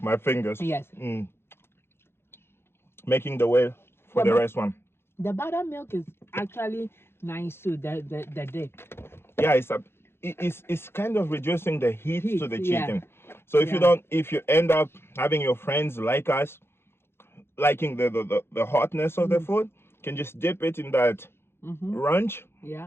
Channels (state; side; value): late; right; 0.12 ms